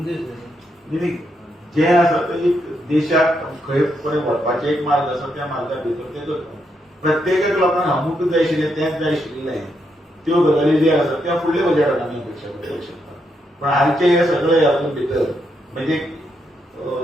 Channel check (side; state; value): both; normal; correlation 0.80